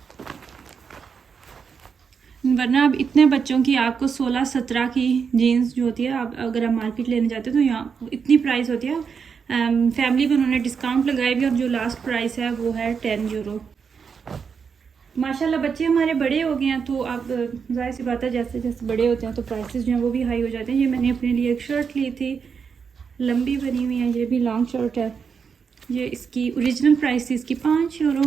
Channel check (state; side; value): quieter; left; 6.2 dB